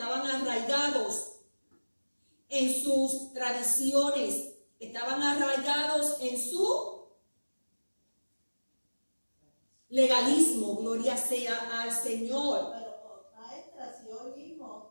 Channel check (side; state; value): both; inverted; correlation -1.00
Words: arraigados en sus tradiciones, estaban arraigados en su legalismo. Gloria sea al Señor. Pero, maestra, si hoy